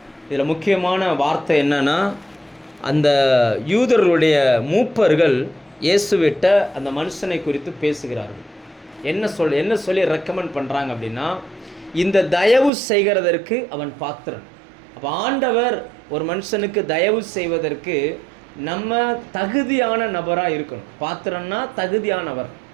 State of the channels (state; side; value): drops out; left; at 12.7 s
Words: இதில் முக்கியமான வார்த்தை என்னன்னா, அந்த யூதர்களுடைய மூப்பர்கள் இயேசுவிட்ட அந்த மனுஷனை குறித்து பேசுகிறார்கள். என்ன சொல்லி ரெக்கமெண்ட் பண்ணுறாங்க அப்படின்னா, இந்த தயவு செய்கிறதற்கு அவன் பாத்திரன். அப்போ ஆண்டவர் ஒரு மனுஷனுக்கு தயவு செய்வதற்கு நம்ம தகுதியான நபராக இருக்கணும். பாத்திரன்னா தகுதியானவர்.